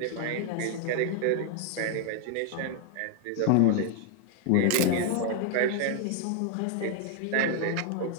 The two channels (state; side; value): different; both; correlation 0.00